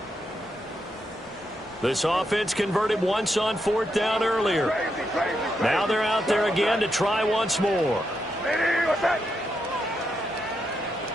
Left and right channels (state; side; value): normal; both; correlation 0.82